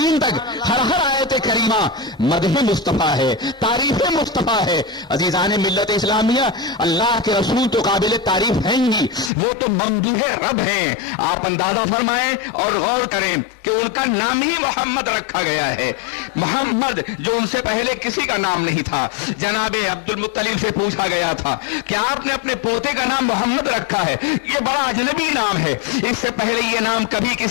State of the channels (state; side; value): drops out; right; at 9.3 s